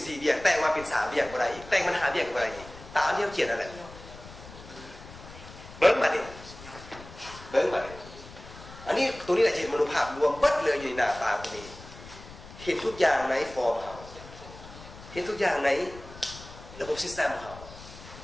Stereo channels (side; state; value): left; noise; rumble, 17 dB below the sound